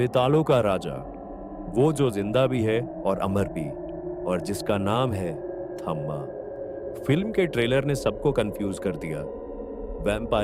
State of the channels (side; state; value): both; identical; correlation 1.00